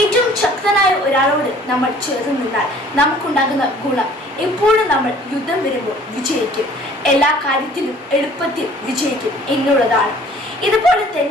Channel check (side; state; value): both; normal; correlation 0.53